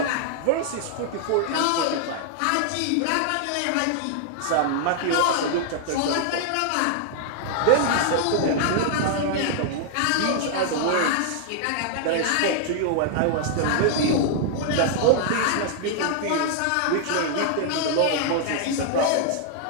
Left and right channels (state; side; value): different; both; correlation -0.01